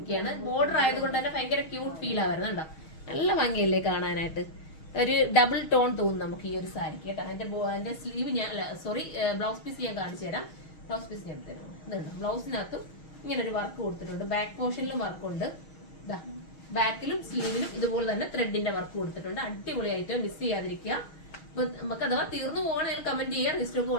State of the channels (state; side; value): late; right; 6.3 ms